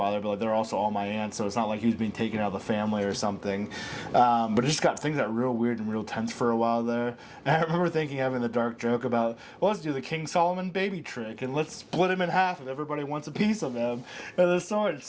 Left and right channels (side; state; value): both; identical; correlation 1.00